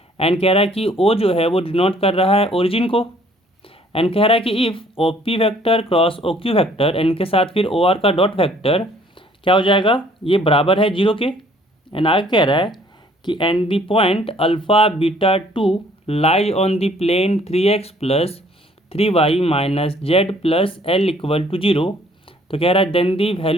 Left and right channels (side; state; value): both; normal; correlation 0.59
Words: एंड कह रहा है कि ओ जो है वो डिनोट कर रहा है ओरिजिन को। एंड कह रहा है कि if O P vector cross O Q vector and के साथ फिर ओ आर का डॉट वैक्टर क्या हो जाएगा, ये बराबर है 0 के। एंड आगे कह रहा है कि and the point alpha beta 2 lie on the plane 3x plus 3y minus Z plus L equal to 0। तो कह रहा है then the